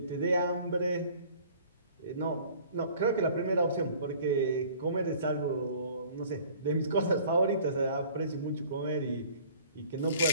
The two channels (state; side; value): inverted; both; correlation -0.50